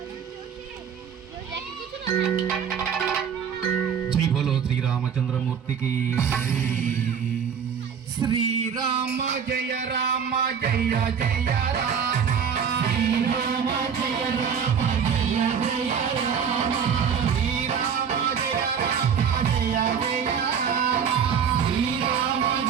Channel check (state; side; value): quieter; left; 7.3 dB